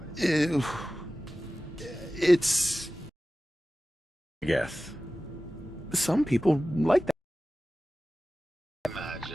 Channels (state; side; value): normal; both; correlation 0.96